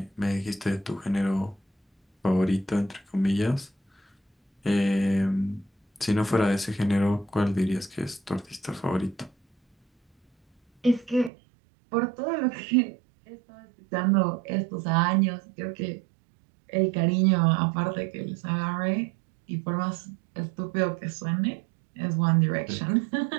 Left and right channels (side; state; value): left; drops out; at 11.3 s